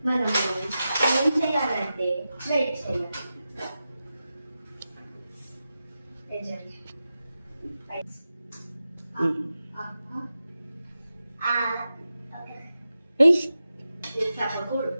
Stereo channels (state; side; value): inverted; both; correlation -0.92